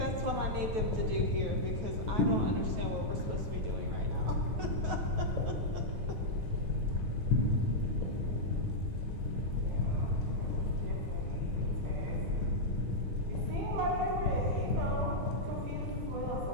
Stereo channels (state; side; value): late; left; 9.3 ms